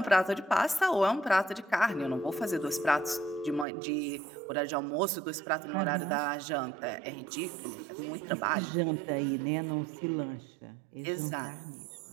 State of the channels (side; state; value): left; drops out; at 3.7 s